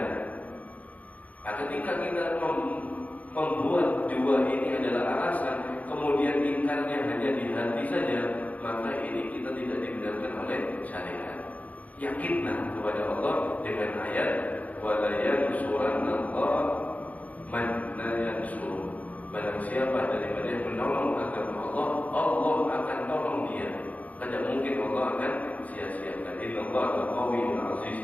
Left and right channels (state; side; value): late; right; 0.073 ms